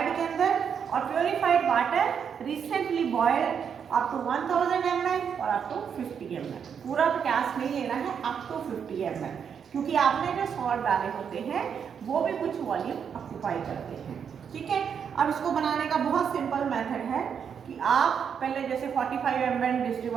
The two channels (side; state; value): left; quieter; 7.3 dB